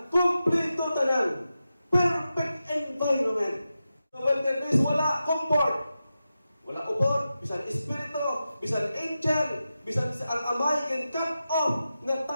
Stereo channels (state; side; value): inverted; both; correlation -0.91